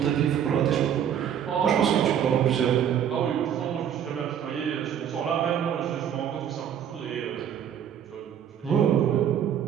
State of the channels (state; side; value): quieter; left; 9.1 dB